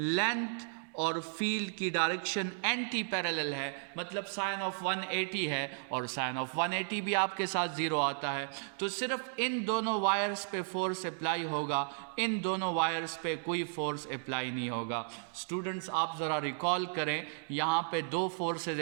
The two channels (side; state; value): left; silent; digital silence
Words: और फील्ड की डायरेक्शन एंटी पैरेलल है, मतलब साइन ऑफ 180 है और साइन ऑफ 180 भी आपके साथ ज़ीरो आता है। तो सिर्फ इन दोनों वायर्स पे फोर्स अप्लाई होगा, इन दोनों वायर्स पे कोई फोर्स अप्लाई नहीं होगा। स्टूडेंट्स आप ज़रा रिकॉल करें, यहाँ पे दो फोर्सेस